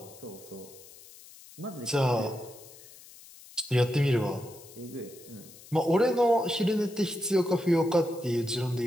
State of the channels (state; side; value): noise; left; hiss, 20 dB below the sound